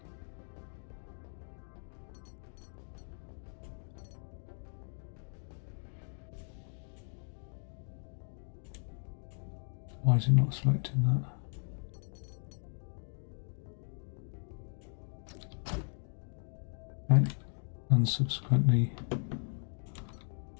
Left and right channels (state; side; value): silent; right; 53 dB below the other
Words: Why is it not selecting that? Okay, and subsequently